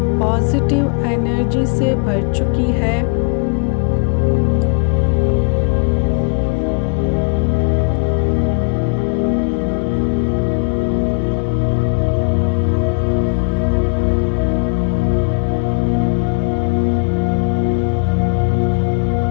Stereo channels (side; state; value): right; quieter; 36.3 dB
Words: पॉजिटिव एनर्जी से भर चुकी है।